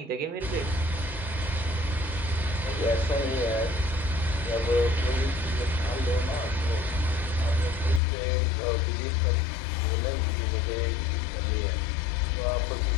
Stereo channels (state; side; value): drops out; right; at 8.0 s